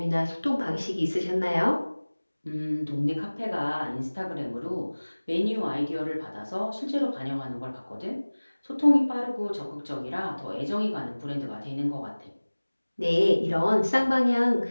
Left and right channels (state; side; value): inverted; both; correlation -1.00